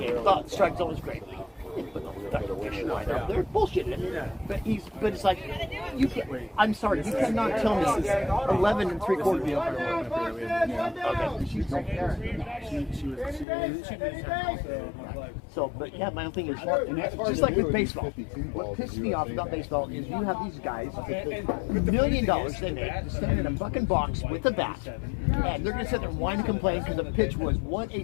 Thought the strike zone was great. Put the fucking fishing line up there. Bullshitting it. But it's like, you can't, I'm sorry, you cannot tell me 11 3/4. So, but yeah, my own thing is, just like with baseball, what pisses me off about baseball is you have these guys, $1 million they make, to stand in a fucking box with a bat, and they're going to sit there and whine and complain because the pitch was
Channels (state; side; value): drops out; right; at 13.5 s